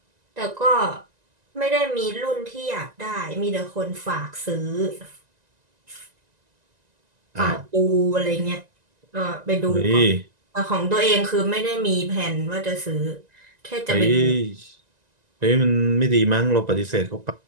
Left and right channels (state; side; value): late; left; 1.9 ms